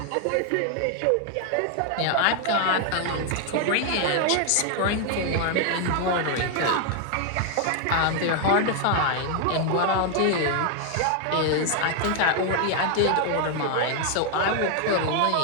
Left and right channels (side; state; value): both; different; correlation 0.00